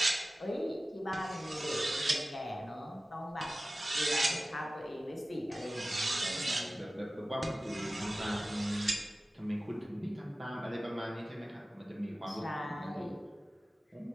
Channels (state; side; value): normal; both; correlation 0.97